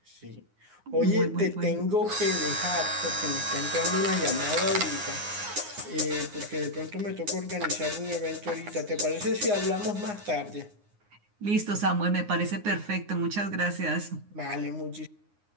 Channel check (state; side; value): late; left; 9.7 ms